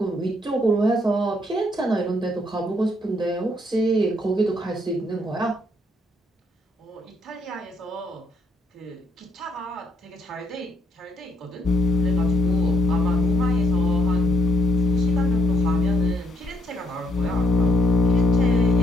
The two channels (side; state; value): both; normal; correlation 0.71